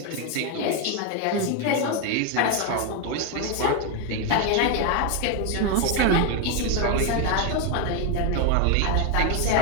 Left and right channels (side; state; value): both; different; correlation 0.01